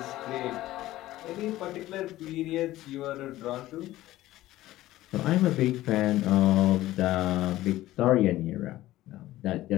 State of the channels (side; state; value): right; quieter; 15.7 dB